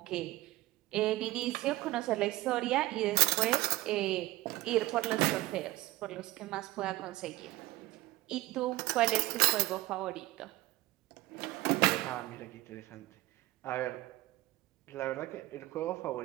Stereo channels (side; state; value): left; quieter; 18.2 dB